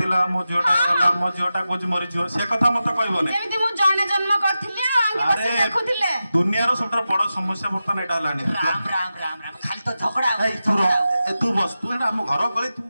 ମୋ ଝିଅଟା ଗଲା, ମୋ ଝିଅଟା କହୁଛି ମରିଯିବ, ସେ କଥା ମତେ କହିବନି। ଯେମିତି ମୁଁ ଜଣେ ଜନ୍ମ କରିଥିଲି ଆଉ ଆଙ୍ଗେ ବସି ଦେଖୁଥିଲେ। ଦୁନିଆର ସବୁଠାରୁ ବଡ ସମସ୍ୟା ବର୍ତ୍ତମାନ ଏଇଟା ହେଲାଣି। ରାମ ରାମ ରାମ ରାମ ଖାଲି ତ ଝଗଡା ଏଇ ତୁ ରହ, ଏ ତୁ ବସ, ତୁ ଏଇଟା ଆମ ଘର ଗଳି, ତୁ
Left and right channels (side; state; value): both; inverted; correlation -0.92